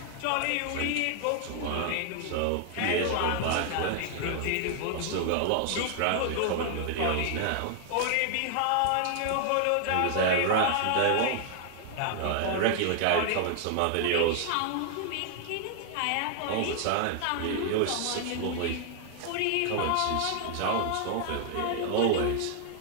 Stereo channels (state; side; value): different; both; correlation 0.00